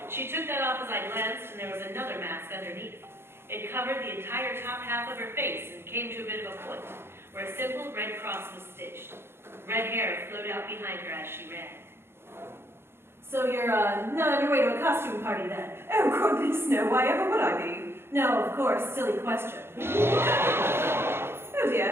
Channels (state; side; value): late; left; 0.12 ms